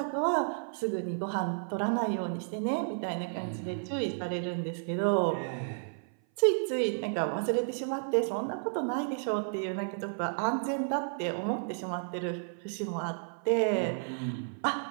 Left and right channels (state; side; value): silent; left; 56 dB below the other